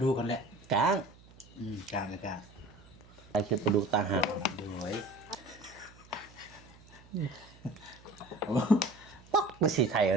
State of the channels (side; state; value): right; noise; hum, 24 dB below the sound